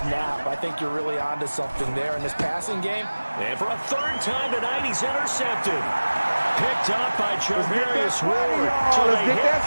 I think you're really onto something there in this passing game. And for a 3rd time tonight, he's intercepted. Picked up by Charvarius Ward. So they hit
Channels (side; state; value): both; inverted; correlation -1.00